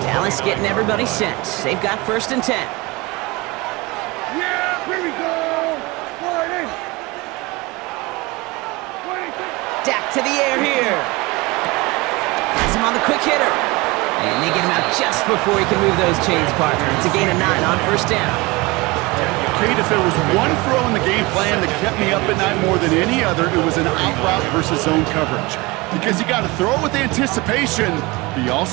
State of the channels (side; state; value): left; quieter; 23.7 dB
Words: Dallas getting everybody set. They've got 1st and 10. Yeah, here we go. Dak to the air here. Has him on the quick hitter. And they get him out just before he can move those chains, partner. It's a gain of 9 on 1st down. Kate, if there was one throw in the game plan that kept me up at night more than any other, it was an out route versus zone coverage. Because you got to throw with anticipation, but you